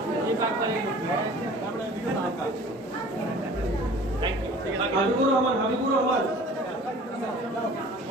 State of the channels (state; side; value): normal; both; correlation 0.46